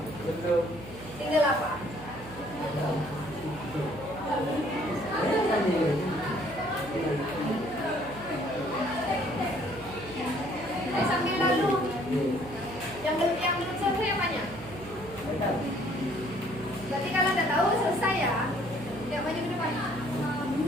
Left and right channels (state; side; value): noise; right; hum, 15 dB below the sound